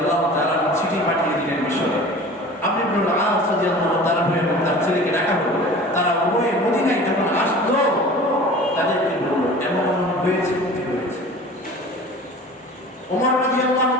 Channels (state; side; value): normal; both; correlation 0.41